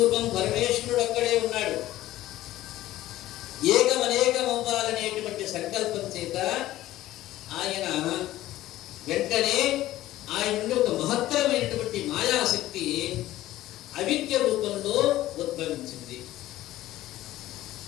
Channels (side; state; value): right; quieter; 15.2 dB